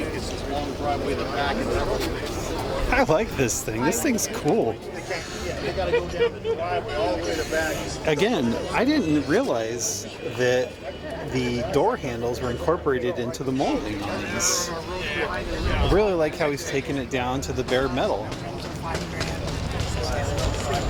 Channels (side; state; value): both; identical; correlation 1.00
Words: this long driveway in the back, and I like this thing. This thing's cool. they got to go down the driveway all the way to the back. Again, I didn't realize that the door handles were incorporated into the molding on these. I really like how he's taken it down to the bare metal.